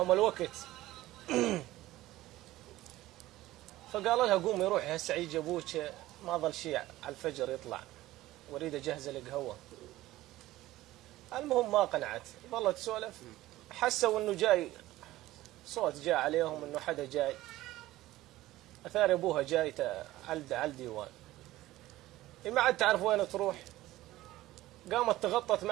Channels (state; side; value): quieter; left; 16.4 dB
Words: الوقت فقال لها قومي روحي هسه يجي ابوك ما ظل شيء على الفجر يطلع واريد اجهز القهوه. المهم ما قنعت، ظلت تسولف، حسوا انه جاي صوت جاء عليهم انه حدا جاي، اثار ابوها جاي على الديوان. ما عاد تعرف وين تروح، قامت تغطت